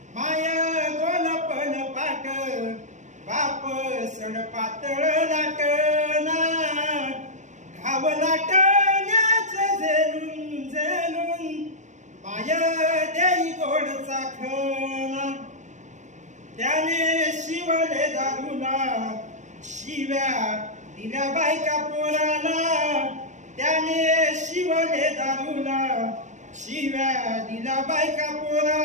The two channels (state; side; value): late; left; 0.35 ms